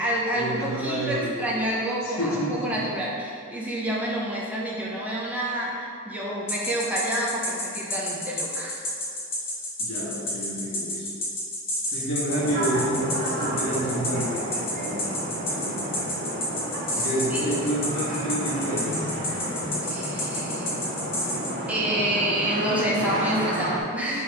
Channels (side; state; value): both; normal; correlation 0.24